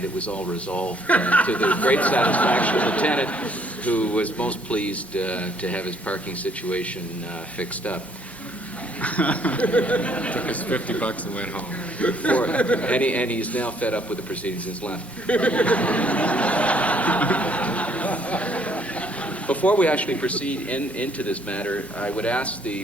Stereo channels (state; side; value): normal; both; correlation 0.65